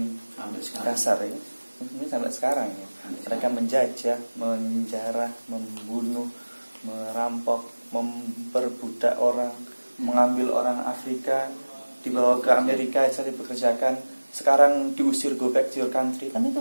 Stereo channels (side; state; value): both; inverted; correlation -1.00